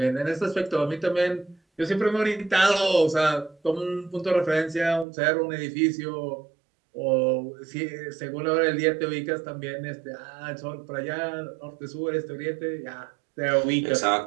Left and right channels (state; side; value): drops out; left; at 5.1 s